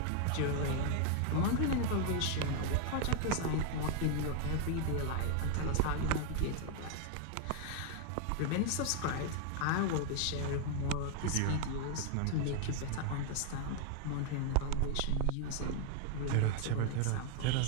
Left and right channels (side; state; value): both; different; correlation 0.00